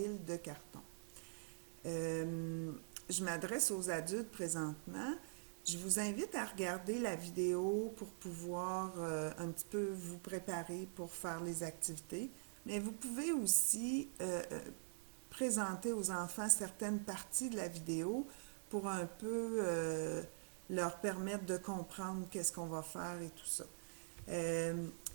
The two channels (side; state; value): left; silent; digital silence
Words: de carton. Je m'adresse aux adultes présentement. Je vous invite à regarder la vidéo pour pouvoir un petit peu vous préparer pour faire les activités. Mais vous pouvez aussi présenter aux enfants certaines parties de la vidéo pour un peu leur permettre de comprendre qu'est-ce qu'on va faire et tout ça. Euh,